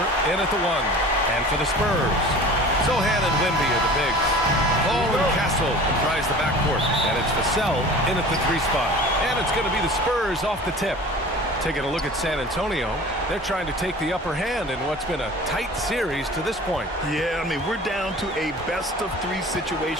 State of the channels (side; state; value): both; normal; correlation 0.41